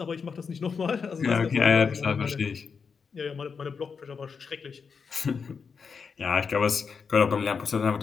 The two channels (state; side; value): quieter; right; 5.7 dB